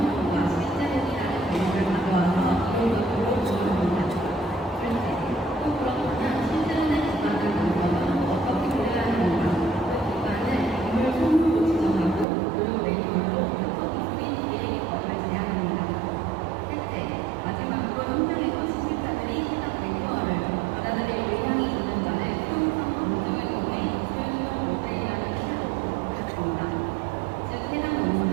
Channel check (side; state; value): left; drops out; at 12.2 s